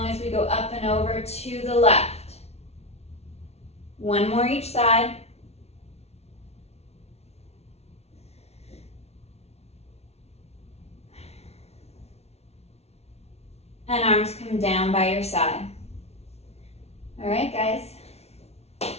as we go up and over to the left. One more each side. And arms come down by your side. All right, guys.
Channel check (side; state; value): right; late; 0.31 ms